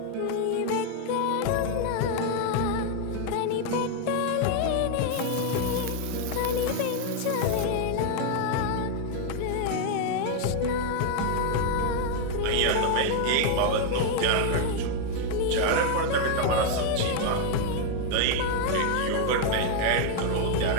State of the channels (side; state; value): both; different; correlation 0.00